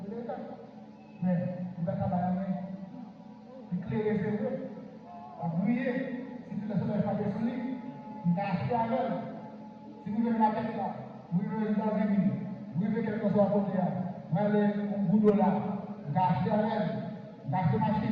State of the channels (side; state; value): both; identical; correlation 1.00